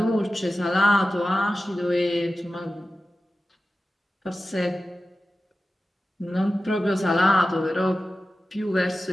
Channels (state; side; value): normal; both; correlation 0.94